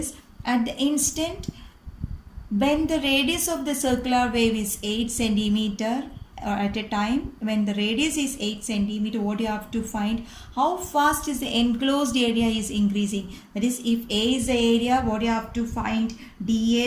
At the instant when the radius of the circular wave is 8 centimeter, or at a time when the radius is 8 centimeter, what you have to find? How fast is the enclosed area is increasing? That is, if A is the area, what you have to find?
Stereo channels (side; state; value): both; identical; correlation 1.00